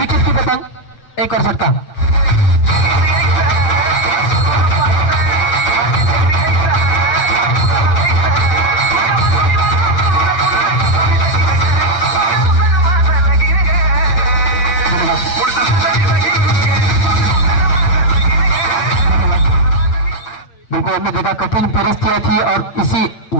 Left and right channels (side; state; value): right; late; 8.4 ms